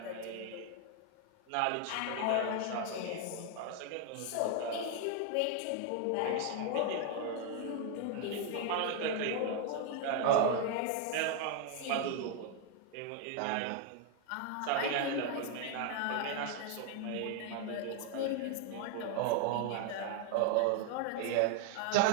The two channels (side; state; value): both; different; correlation 0.00